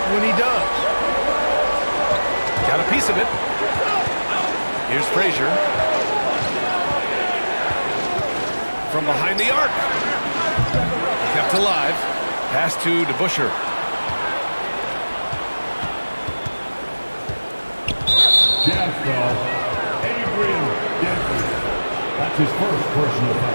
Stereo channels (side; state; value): both; inverted; correlation -1.00